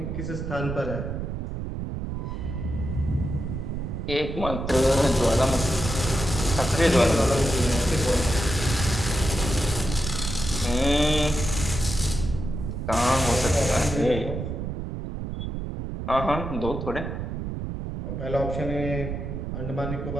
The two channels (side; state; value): right; noise; rumble, 5 dB below the sound